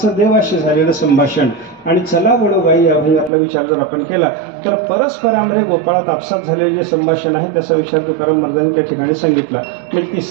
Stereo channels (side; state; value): left; drops out; at 3.3 s